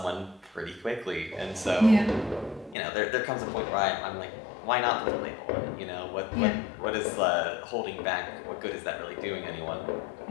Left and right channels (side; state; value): right; drops out; at 2.8 s